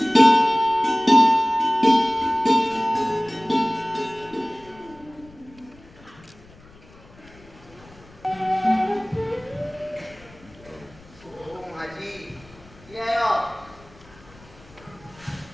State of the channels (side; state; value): left; noise; rumble, 24 dB below the sound